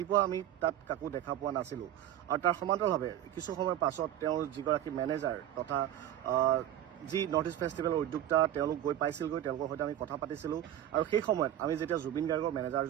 আমি তাত কাকো দেখা পোৱা নাছিলোঁ। আৰু তাৰ সমান্তৰালভাৱে কিছু সময়ৰ পাছত তেওঁৰ যিগৰাকী মেনেজাৰ তথা যি নৰ্থ ইষ্ট ফেষ্টিভেলৰ উদ্যোক্তা তেওঁলোক গৈ পাইছিলগৈ, তেওঁলোকৰ সৈতে আমি কথা পাতিছিলোঁ। আৰু সেই সময়ত আমি যেতিয়া জুবিন গাৰ্গৰ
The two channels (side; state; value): left; quieter; 11.7 dB